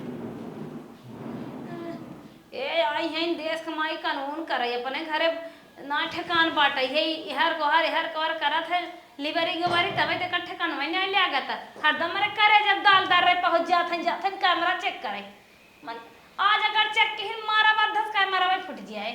ए आई हैं देश कमाई कानून करे अपने घरे ना ठेकान बाटे है हर कोहर करत है लिबरी गोबरी तबे ते कट्ठे कानवे नहीं लागत हरदम रे करे जब दाल दार रे पहुंच जाथन कैमरा चेक करे मन आज अगर चेक के मारा बद्धस कैमरा में फुट जाए।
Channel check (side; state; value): both; identical; correlation 1.00